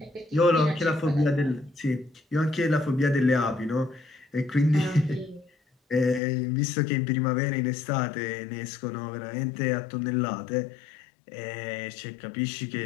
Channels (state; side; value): drops out; right; at 6.2 s